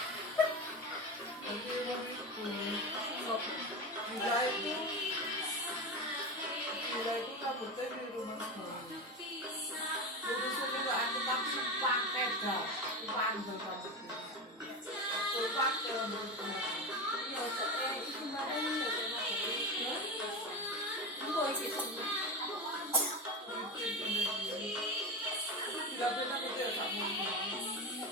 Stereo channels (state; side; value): normal; both; correlation 0.21